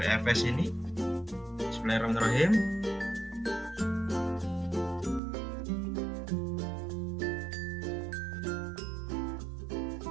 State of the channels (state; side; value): drops out; left; at 5.2 s